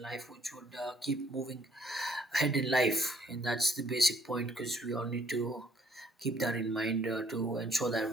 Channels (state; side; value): normal; both; correlation 0.65